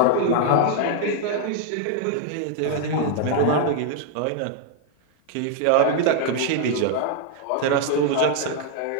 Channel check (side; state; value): both; different; correlation 0.00